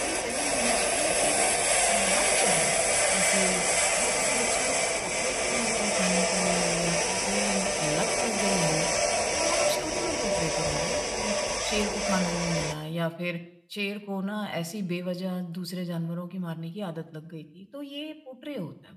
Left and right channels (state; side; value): identical; both; correlation 1.00